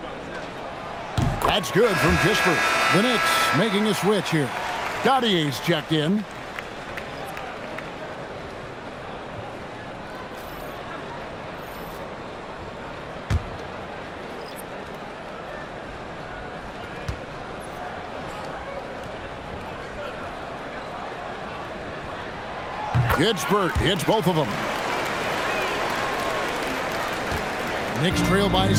That's good from Kispert. The Knicks making a switch here. Gaudier's checked in. Kispert hits both of them. Knicks trail by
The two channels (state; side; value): identical; both; correlation 1.00